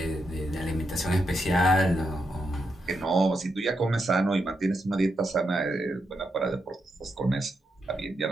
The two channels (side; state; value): both; normal; correlation 0.83